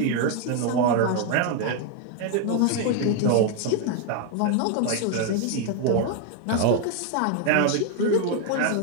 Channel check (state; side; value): different; both; correlation 0.01